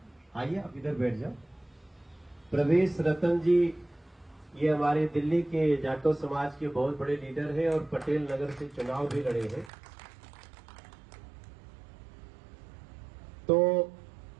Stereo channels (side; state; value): left; drops out; at 9.7 s